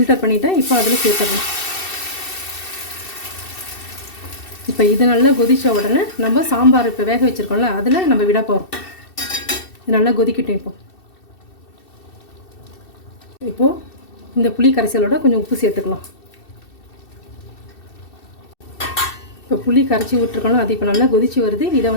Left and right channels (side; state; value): right; late; 2.7 ms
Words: பண்ணிட்டேன். இப்போ அதில் சேர்த்துடலாம். இப்போ இது நல்லா கொதித்த உடனே நம்ம சாம்பார் இப்போ வேக வச்சுருக்கோம்ல அதில் நம்ம விட போகிறோம். இது நல்லா கொதிக்கட்டும். இப்போது இந்த புளி கரைசலோட கொஞ்சம் உப்பு சேர்த்துக்கலாம். இப்போ புளி கரைச்சி விட்டுருக்கோம்ல அது இப்போ நல்லா கொதிச்சு வருது. இதை